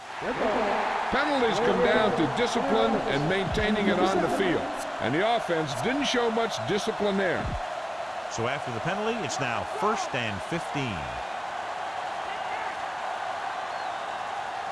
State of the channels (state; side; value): identical; both; correlation 1.00